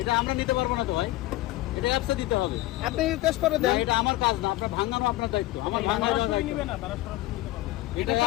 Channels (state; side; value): quieter; right; 17.3 dB